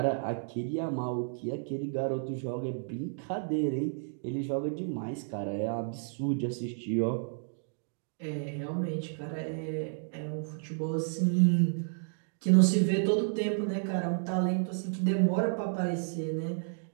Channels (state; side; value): silent; left; digital silence